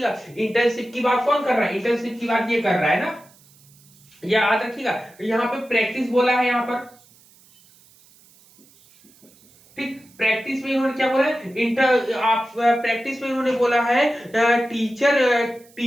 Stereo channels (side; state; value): right; noise; hiss, 28 dB below the sound